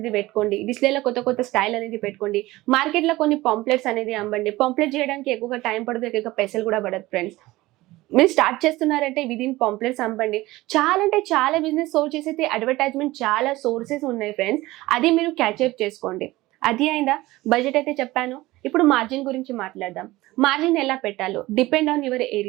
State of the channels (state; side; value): quieter; left; 18.7 dB